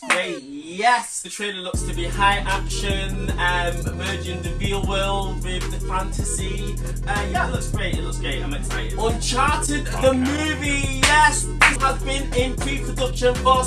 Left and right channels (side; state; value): both; identical; correlation 1.00